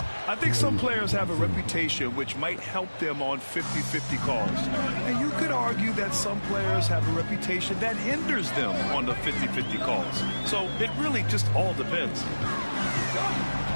I think some players have a reputation which might help them on 50-50 calls. And you could argue that some players have a reputation that hinders them on the 50-50 calls. So it really just all depends.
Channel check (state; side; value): inverted; both; correlation -1.00